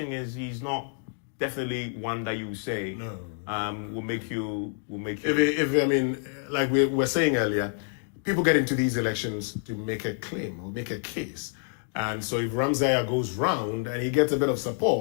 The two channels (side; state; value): right; silent; 59 dB below the other